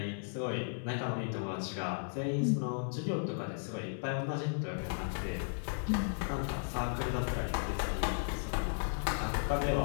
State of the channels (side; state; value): right; silent; 54 dB below the other